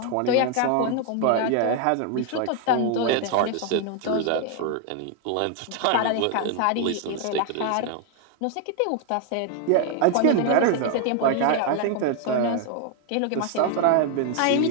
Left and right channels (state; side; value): different; both; correlation 0.00